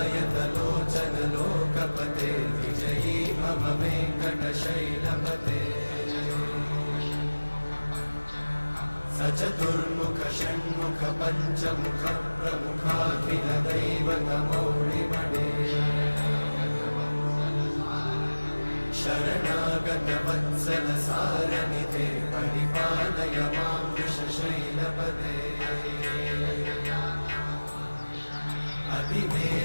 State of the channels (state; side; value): inverted; both; correlation -1.00